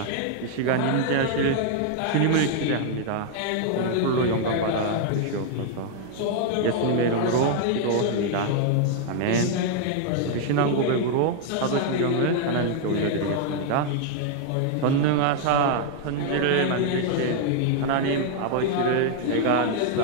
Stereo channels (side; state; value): both; different; correlation 0.00